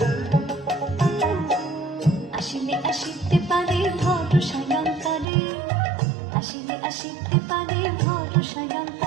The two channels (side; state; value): left; drops out; at 5.2 s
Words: আসিলে আসিতে পারে ভরসায় অন্তরে, আসিলে আসিতে পারে ভরসায়